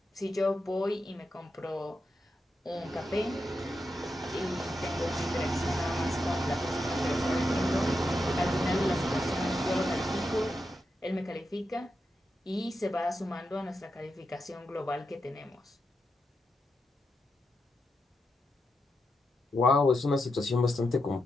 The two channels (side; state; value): both; normal; correlation 0.86